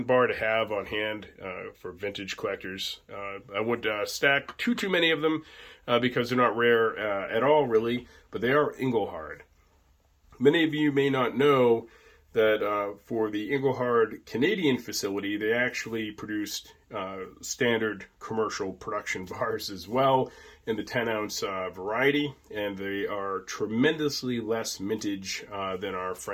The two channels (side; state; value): both; identical; correlation 1.00